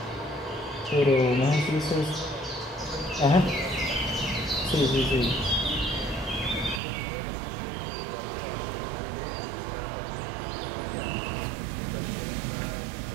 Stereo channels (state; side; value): drops out; left; at 6.8 s